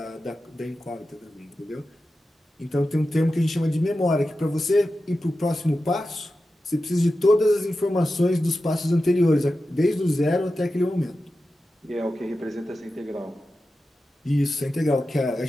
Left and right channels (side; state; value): both; normal; correlation 0.92